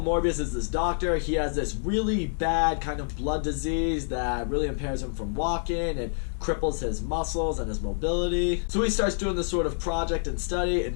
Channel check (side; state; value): right; silent; digital silence